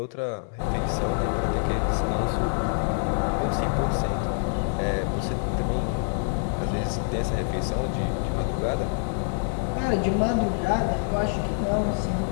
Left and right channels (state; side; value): silent; right; digital silence